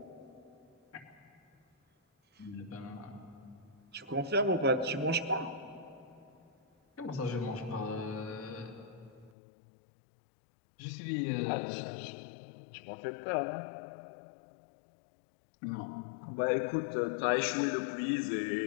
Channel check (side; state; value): right; drops out; at 9.3 s